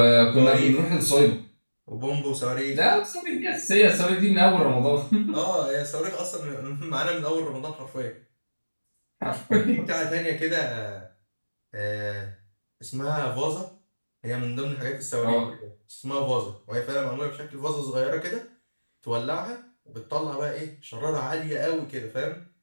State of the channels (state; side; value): inverted; both; correlation -1.00